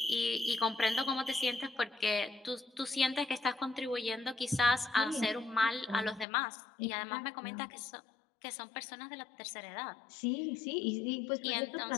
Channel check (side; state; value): right; drops out; at 6.2 s